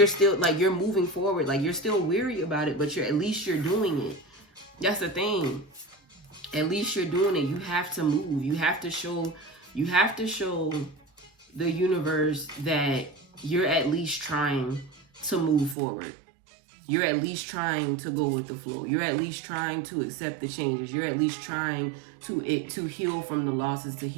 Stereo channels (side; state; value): left; drops out; at 15.8 s